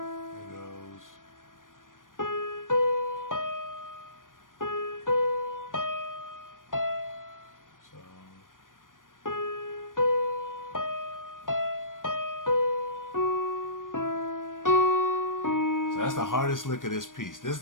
So that's the hardest lick of this piece. This is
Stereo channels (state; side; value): late; right; 0.89 ms